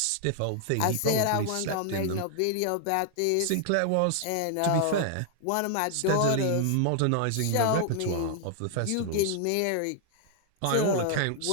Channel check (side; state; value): both; different; correlation 0.00